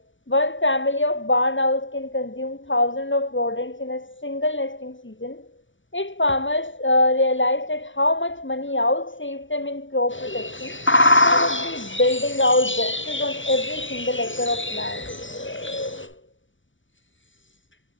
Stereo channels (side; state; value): right; late; 0.56 ms